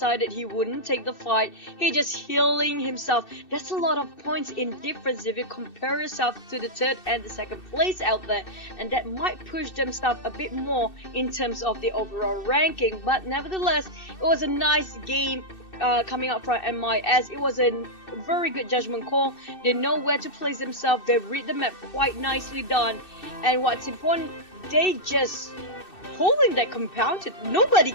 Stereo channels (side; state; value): right; late; 2.6 ms